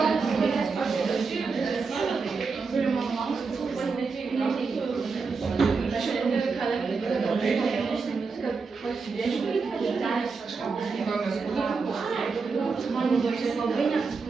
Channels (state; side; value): quieter; left; 4.7 dB